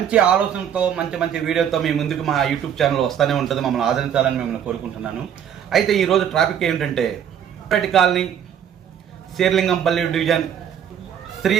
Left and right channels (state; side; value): quieter; left; 9.0 dB